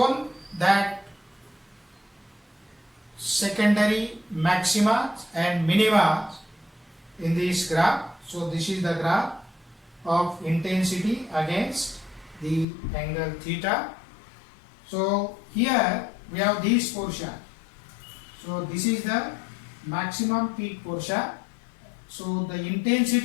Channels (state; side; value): drops out; right; at 12.7 s